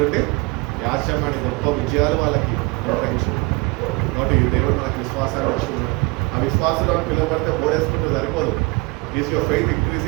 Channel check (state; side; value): quieter; left; 26.9 dB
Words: యాశ్యమని గొప్ప విజయాలు వాళ్ళకి నిర్వహించారు. కాబట్టి దేవుడు మనకి విశ్వాసాన్ని వచ్చింది. ఆ విశ్వాసంలో పిల్లబడితే బోడేసుకుంటూ సరిపోదు. Is your faith